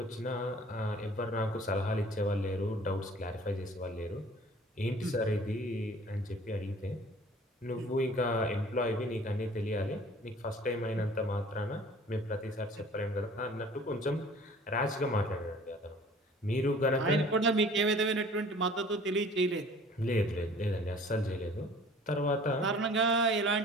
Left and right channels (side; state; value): both; normal; correlation 0.49